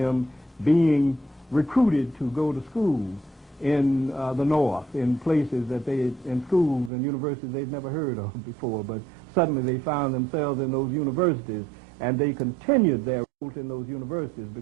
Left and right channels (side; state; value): left; drops out; at 6.9 s